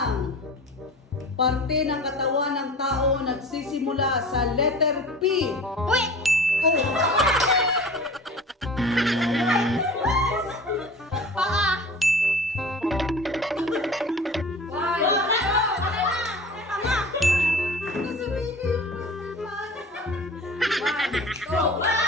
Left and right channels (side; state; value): both; normal; correlation 0.39